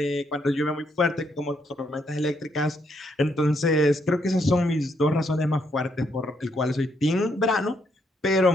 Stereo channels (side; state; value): both; normal; correlation 0.75